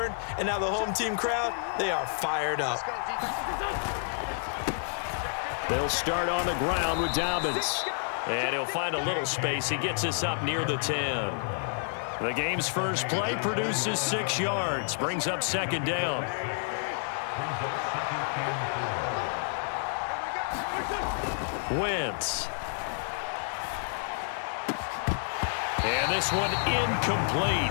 and now the home team crowd, they are fired up. They'll start on the ground with Dobbins. And he'll find a little space. He gets us up near the 10. The game's first play produces 6 yards, brings up second down. Wentz. And this one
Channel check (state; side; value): silent; right; digital silence